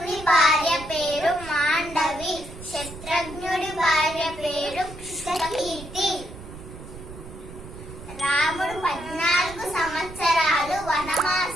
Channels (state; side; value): noise; right; rumble, 14 dB below the sound